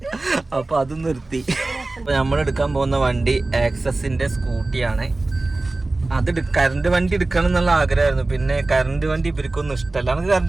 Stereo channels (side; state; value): left; quieter; 3.1 dB